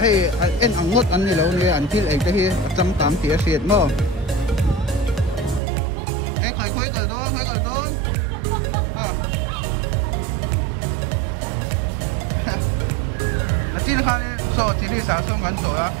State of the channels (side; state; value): left; drops out; at 5.6 s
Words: en angot an ni lo ni an til ek tahi cham tam ti asiat mo khoi kal don na tin khan so ti li sa so ngan so la